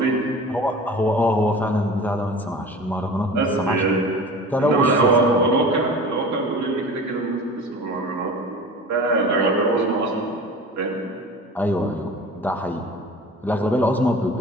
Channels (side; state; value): both; normal; correlation 0.38